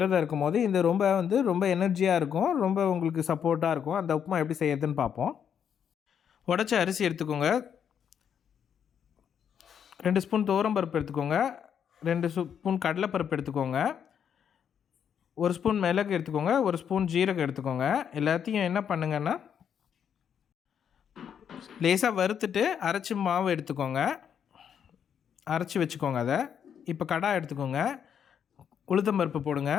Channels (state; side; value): quieter; right; 8.2 dB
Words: இருக்கும் போது இந்த ரொம்ப எனர்ஜியாக இருக்கும், ரொம்ப உங்களுக்கு சப்போர்ட்டாக இருக்கும். அந்த உப்புமா எப்படி செய்யறதுன்னு பார்ப்போம். உடச்ச அரிசி எடுத்துக்கோங்க, 2 ஸ்பூன் துவரம்பருப்பு எடுத்துக்கோங்க, 2 ஸ்பூன் கடலைப்பருப்பு எடுத்துக்கோங்க, 1 ஸ்பூன் மிளகு எடுத்துக்கோங்க, 1 ஸ்பூன் ஜீரகம் எடுத்துக்கோங்க. எல்லாத்தையும் என்ன பண்ணுங்கன்னா லேசாக வறுத்துட்டு அரைச்சி மாவு எடுத்துக்கோங்க, அரைச்சி வச்சுக்கோங்க. அதை இப்போ கடாய் எடுத்துக்கோங்க, உளுத்தம் பருப்பு போடுங்க,